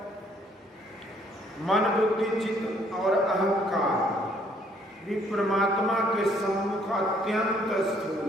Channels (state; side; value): normal; both; correlation 0.64